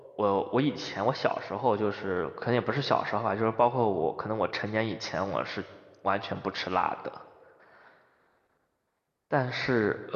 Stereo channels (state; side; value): identical; both; correlation 1.00